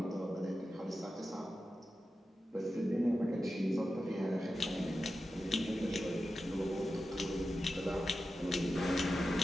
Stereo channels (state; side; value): normal; both; correlation 0.92